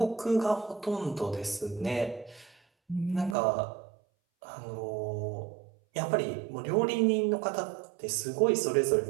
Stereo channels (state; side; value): drops out; left; at 3.4 s